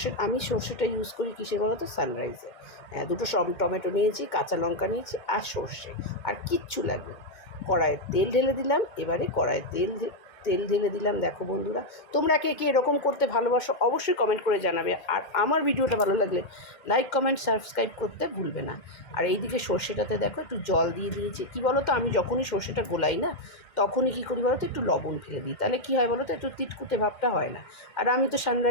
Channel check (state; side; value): late; right; 2.2 ms